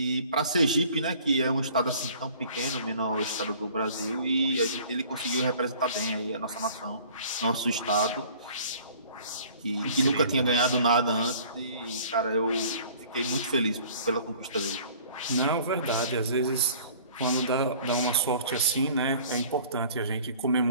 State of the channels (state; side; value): inverted; both; correlation -0.50